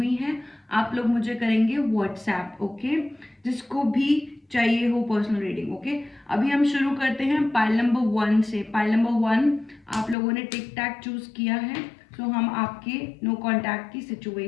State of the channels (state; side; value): drops out; right; at 10.2 s